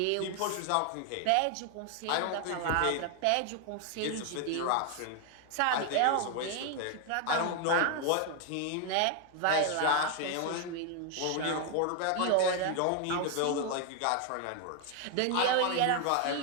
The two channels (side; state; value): both; different; correlation 0.00